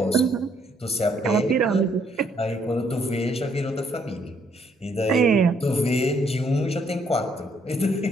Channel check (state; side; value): normal; both; correlation 0.69